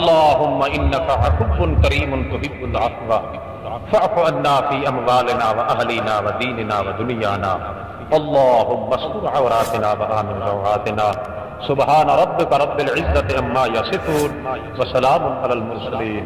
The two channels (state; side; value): identical; both; correlation 1.00